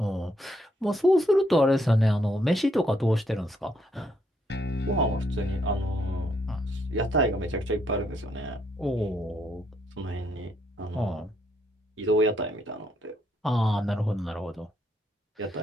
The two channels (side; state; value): both; normal; correlation 0.73